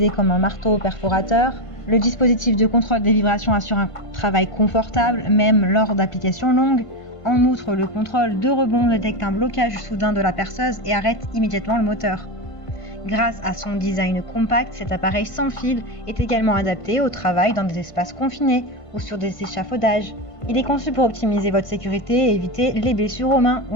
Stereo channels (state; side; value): late; right; 1.5 ms